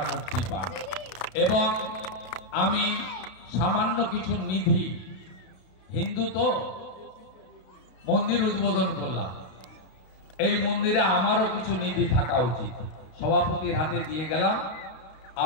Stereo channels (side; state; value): right; late; 32 ms